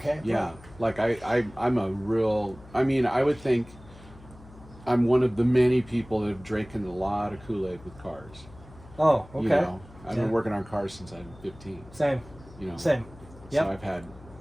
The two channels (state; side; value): noise; left; hum, 21 dB below the sound